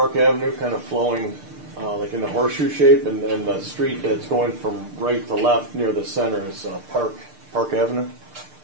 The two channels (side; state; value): left; late; 6.6 ms